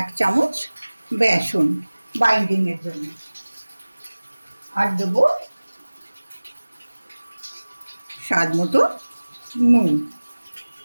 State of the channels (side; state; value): both; inverted; correlation -1.00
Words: চামচ বেসন বাইন্ডিংয়ের জন্য। আর দেবো স্বাদ মতো নুন